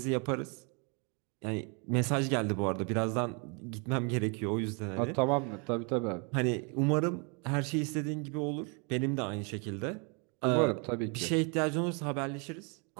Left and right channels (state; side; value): quieter; left; 35.0 dB